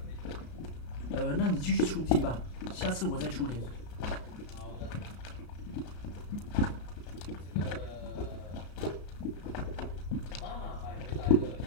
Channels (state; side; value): late; right; 33 ms